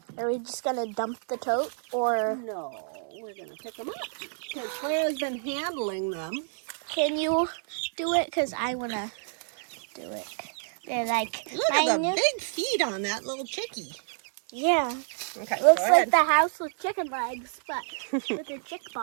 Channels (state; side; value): silent; left; 59 dB below the other